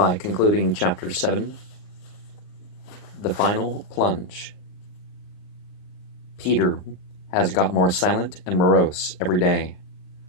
concluding Chapter 7, The Final Plunge. Peter has got more silent and morose every day,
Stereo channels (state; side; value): late; right; 39 ms